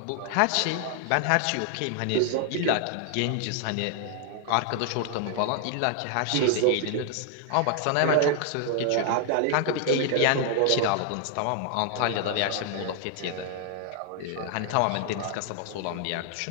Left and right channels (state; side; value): different; both; correlation 0.00